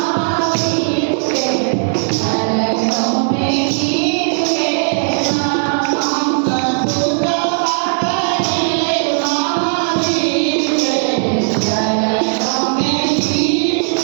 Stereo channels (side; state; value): left; silent; 61 dB below the other